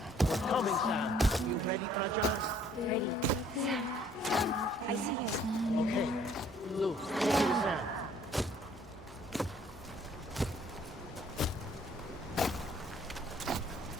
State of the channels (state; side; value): normal; both; correlation 0.60